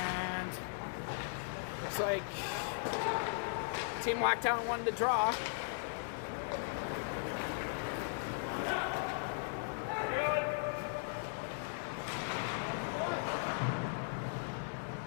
looks like Team Lockdown won the draw.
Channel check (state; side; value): silent; right; digital silence